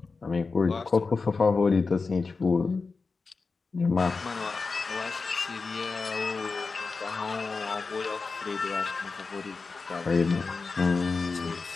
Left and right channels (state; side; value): quieter; right; 4.3 dB